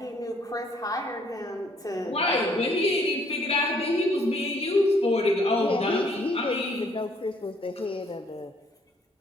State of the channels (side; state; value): both; normal; correlation 0.64